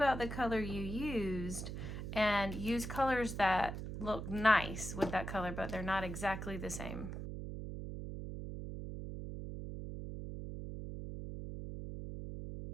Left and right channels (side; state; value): right; noise; hum, 6 dB below the sound